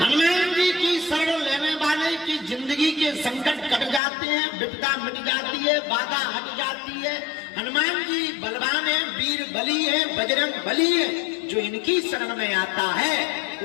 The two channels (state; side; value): drops out; right; at 4.0 s